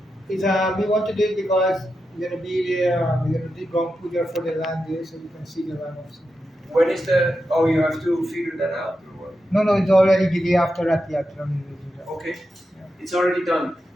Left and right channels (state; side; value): normal; both; correlation 0.88